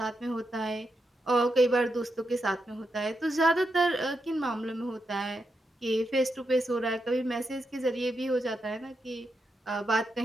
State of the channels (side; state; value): both; normal; correlation 0.85